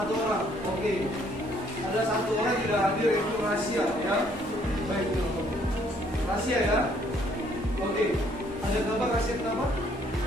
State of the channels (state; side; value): normal; both; correlation 0.65